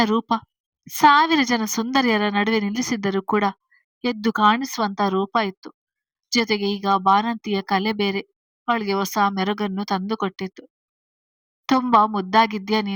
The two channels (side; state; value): both; identical; correlation 1.00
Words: ರೂಪ 1000 ಜನ ಸುಂದರಿಯರ ನಡುವೆ ನಿಲ್ಲಿಸಿದ್ದರೂ ಕೂಡ ಎದ್ದು ಕಾಣಿಸುವಂತ ರೂಪ ಇತ್ತು. ಜೊತೆಗೆ ಈಗ ಬಾಣಂತಿಯ ಕಲೆ ಬೇರೆ ಅವಳಿಗೆ ಹೊಸ ಮೆರುಗನ್ನು ತಂದುಕೊಟ್ಟಿತ್ತು. ತುಂಬಾ ಮುದ್ದಾಗಿದ್ಯಾ